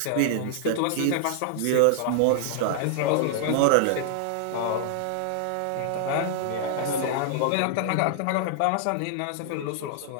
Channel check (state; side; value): different; both; correlation -0.01